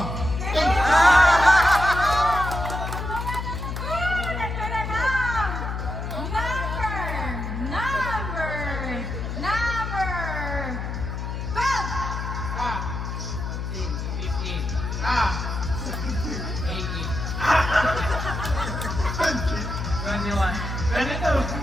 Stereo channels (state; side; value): noise; left; hum, 4 dB below the sound